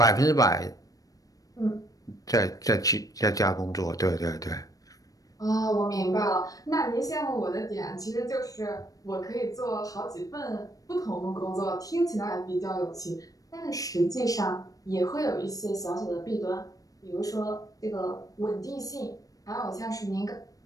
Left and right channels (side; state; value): right; late; 0.17 ms